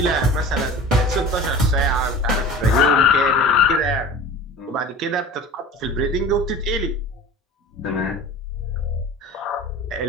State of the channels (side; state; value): both; normal; correlation 0.38